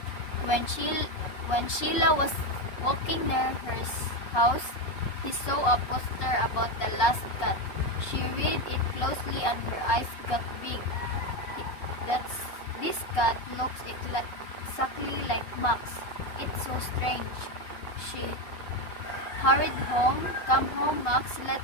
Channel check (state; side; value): late; right; 5.4 ms